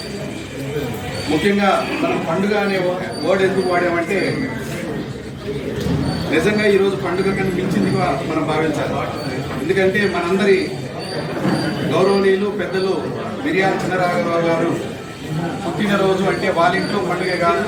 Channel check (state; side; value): identical; both; correlation 1.00